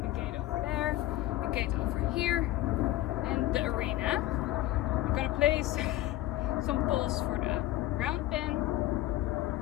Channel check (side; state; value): right; quieter; 15.4 dB